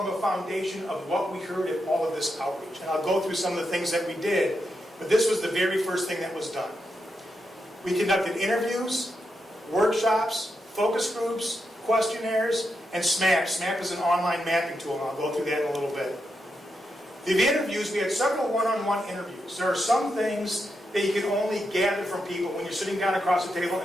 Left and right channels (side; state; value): both; normal; correlation 0.85